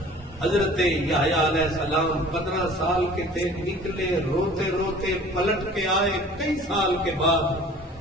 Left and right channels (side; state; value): both; normal; correlation 0.47